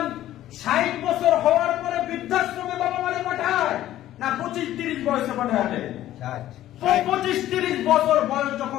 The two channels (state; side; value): quieter; right; 13.4 dB